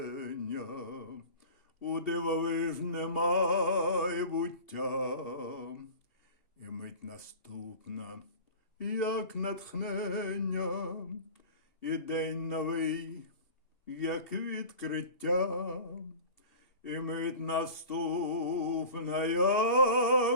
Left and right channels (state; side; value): late; right; 2.8 ms